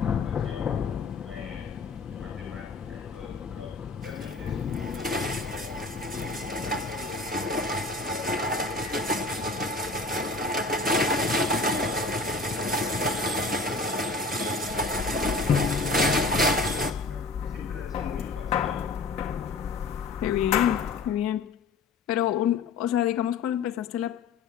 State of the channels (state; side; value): quieter; right; 3.7 dB